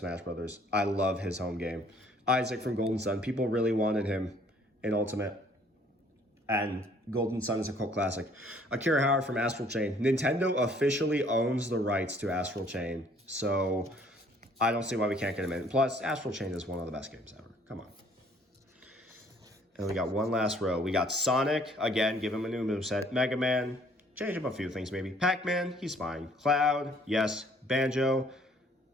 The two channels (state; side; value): normal; both; correlation 0.60